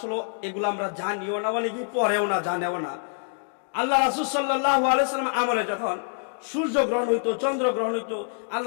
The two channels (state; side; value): silent; right; digital silence